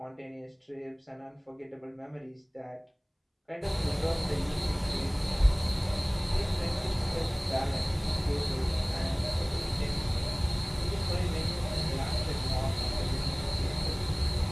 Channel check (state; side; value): identical; both; correlation 1.00